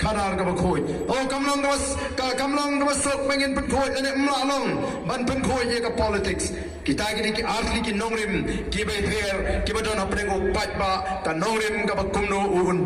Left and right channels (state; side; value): identical; both; correlation 1.00